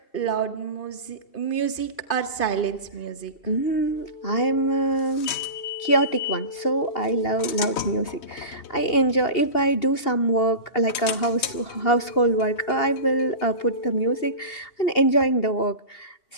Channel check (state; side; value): late; right; 3.2 ms